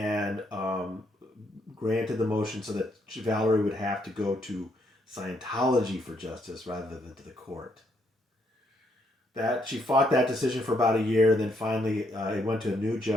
granted the motion so that Valerie would have to go to Scientology for justice rather than to the court. That she fought that decision for about a year, then finally it went to a new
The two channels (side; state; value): both; normal; correlation 0.73